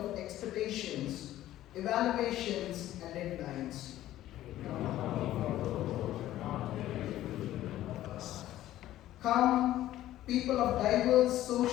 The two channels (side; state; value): right; quieter; 13.9 dB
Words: expectations, evaluations, and deadlines. Come, people of diverse